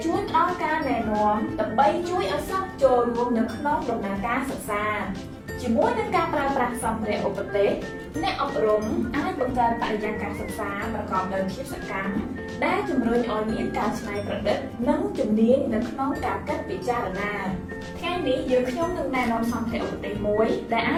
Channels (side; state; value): both; identical; correlation 1.00